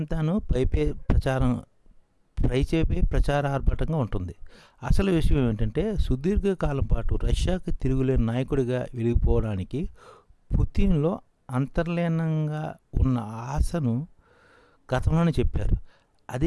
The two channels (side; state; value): both; identical; correlation 1.00